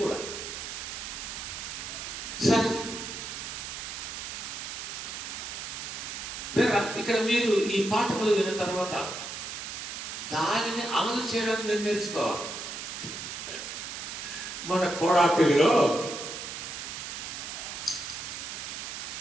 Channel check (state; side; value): noise; right; hiss, 7 dB below the sound